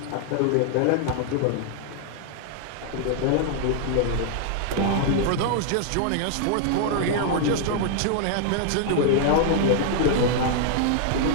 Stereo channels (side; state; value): both; different; correlation 0.00